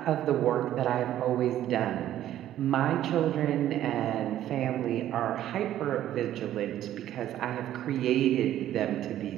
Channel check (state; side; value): quieter; left; 12.3 dB